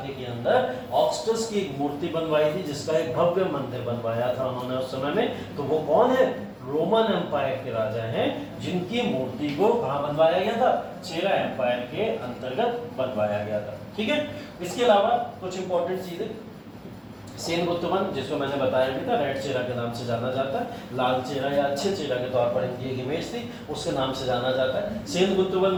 के अंदर ऑगस्टस की एक मूर्ति बनवाई थी, जिसका एक भव्य मंदिर बनवाया था उन्होंने उस समय में। तो वो कौन है? रोमन एम्पायर के राजा हैं, जिनकी मूर्ति को कहां बनवाया गया था? चेरा एम्पायर के अंतर्गत बनवाया गया था। ठीक है, इसके अलावा कुछ इंपॉर्टेंट चीजें, सेनगुप्तवन जिसको मैंने बताया भी था, रेड चेरा के नाम से जाना जाता है, लाल चेरा या अच्छे चेरा के तौर पर इनकी एक इमेज थी, उसके नाम से जाना जाता है। सेनगुप्तवन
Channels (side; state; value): both; identical; correlation 1.00